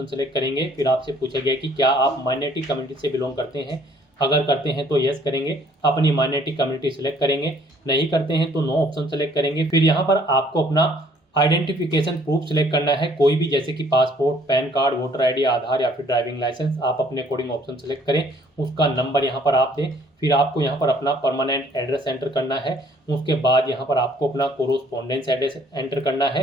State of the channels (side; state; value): both; normal; correlation 0.60